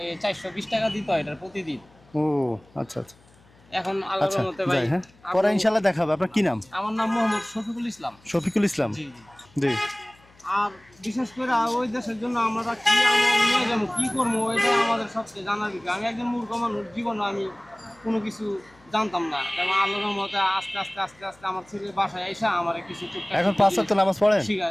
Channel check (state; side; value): noise; left; hum, 29 dB below the sound